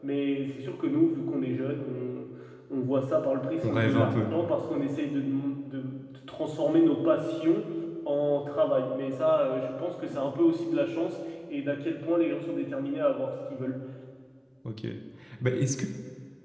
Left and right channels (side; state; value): both; identical; correlation 1.00